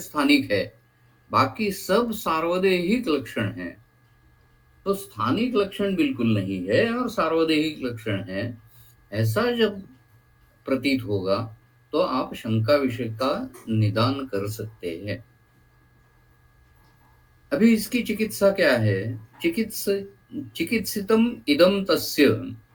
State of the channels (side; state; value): both; identical; correlation 1.00